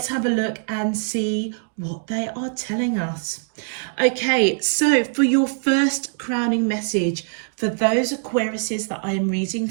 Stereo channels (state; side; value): silent; left; 63 dB below the other